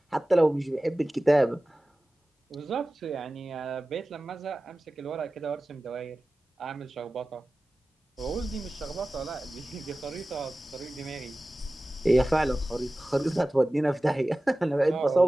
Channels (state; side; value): normal; both; correlation 0.96